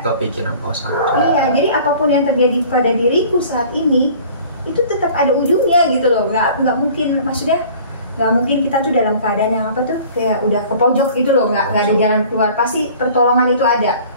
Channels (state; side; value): inverted; both; correlation -0.48